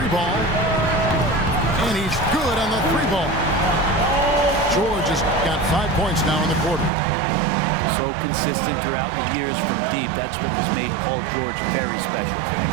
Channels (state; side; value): drops out; left; at 6.9 s